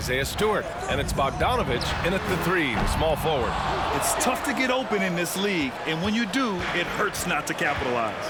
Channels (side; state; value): both; identical; correlation 1.00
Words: Stewart. And it's Bogdanovich in at the 3, the small forward. It's tough to get open in this league, and when you do, it hurts not to capitalize.